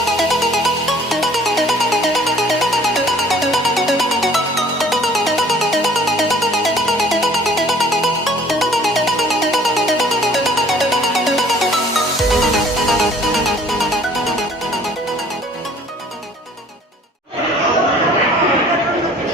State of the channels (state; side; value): normal; both; correlation 0.55